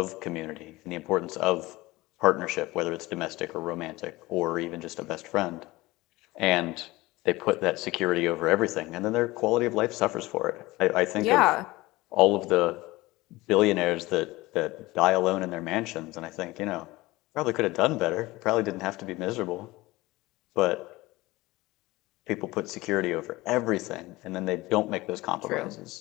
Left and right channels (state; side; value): quieter; right; 20.1 dB